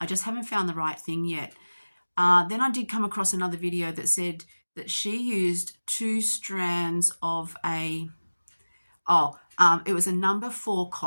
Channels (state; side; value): inverted; both; correlation -1.00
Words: just haven't found the right thing yet. Then I did come across another video that said that she used 2 strands of it was a number 4